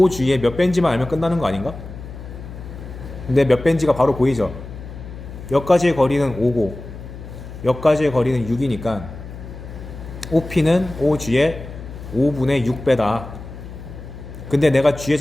몇 벤지만 알면 끝나는 거 아닌가? 근데 몇 벤지가 바로 보이죠. 여기까지의 거리는 5고 여기까지의 거리는 6이니까 OP는 OG의 5분의 6배다. 근데 내가 G의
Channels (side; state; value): left; noise; hum, 12 dB below the sound